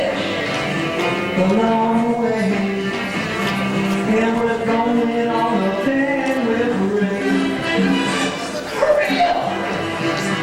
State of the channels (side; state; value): both; identical; correlation 1.00